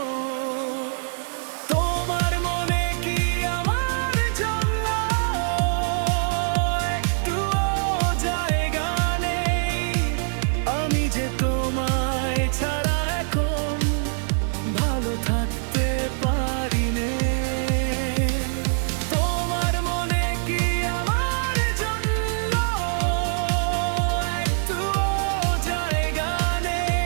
তোমার মনে কি আমার জন্য একটুও জায়গা নেই? আমি যে তোমায় ছাড়া এখন ভালো থাকতে পারি নে। তোমার মনে কি আমার জন্য একটুও জায়গা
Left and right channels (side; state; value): left; silent; digital silence